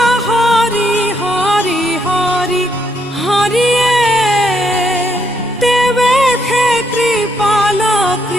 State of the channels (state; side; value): normal; both; correlation 0.75